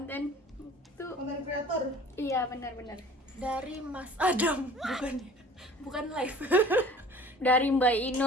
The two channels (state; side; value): normal; both; correlation 0.46